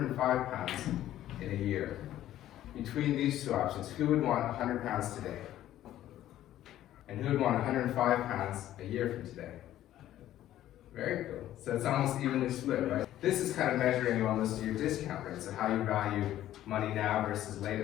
pounds in a year? Between these two options, who would want 100 pounds today? And who would want 105 pounds a year from today? Very cool. So it's almost evenly split, right? This is kind of measuring almost your discount rate, so how you value money now versus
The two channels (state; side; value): quieter; right; 13.0 dB